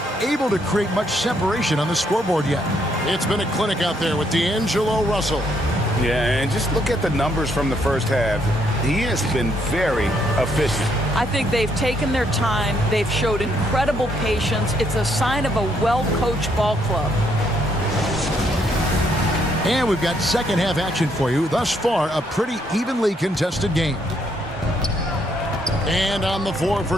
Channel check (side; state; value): both; normal; correlation 0.72